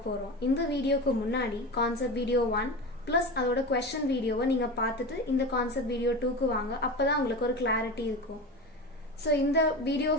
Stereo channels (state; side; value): normal; both; correlation 0.26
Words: போறோம். இந்த வீடியோக்கு முன்னாடி கான்செப்ட் வீடியோ 1 ப்ளஸ் அதோட क्वेश्चन வீடியோவை நீங்க பார்த்துட்டு இந்த கான்செப்ட் வீடியோ 2க்கு வாங்க. அப்பதான் உங்களுக்கு ஒரு கிளாரிட்டி இருக்கும். ஸோ இந்த வீடியோ